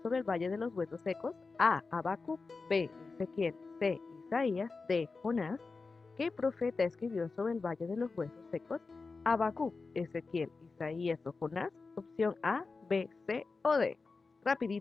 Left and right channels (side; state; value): right; quieter; 4.2 dB